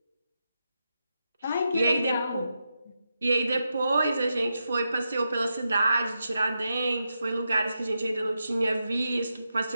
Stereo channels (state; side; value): inverted; both; correlation -0.87